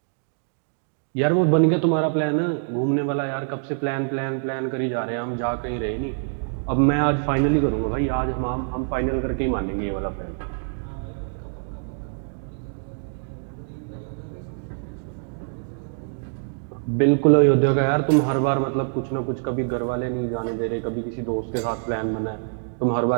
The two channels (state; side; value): silent; left; digital silence